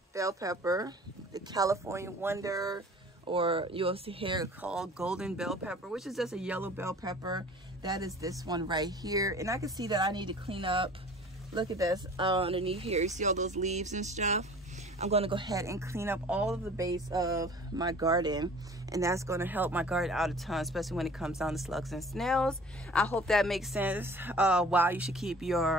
bell pepper, the California Wonder, or you'll see here called golden bell pepper, which is just a yellow bell pepper. That is this one right here. And I can see that I need to clean up. Look at this underneath here. You see all those leaves and stuff? I'm going to go ahead and clean up all of the base of my garden, and that's going to help my garden out a ton, especially when it comes down to slugs and snails. I hope that makes sense. Why you should keep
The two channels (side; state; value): both; normal; correlation 0.46